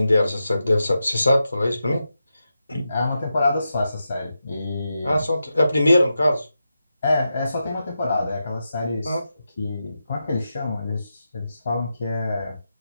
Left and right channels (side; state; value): both; inverted; correlation -0.88